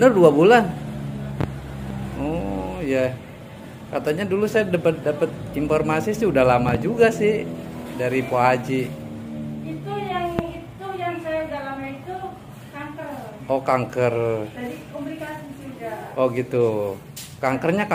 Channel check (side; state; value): both; identical; correlation 1.00